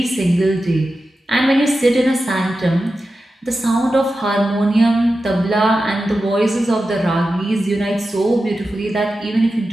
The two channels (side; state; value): both; normal; correlation 0.92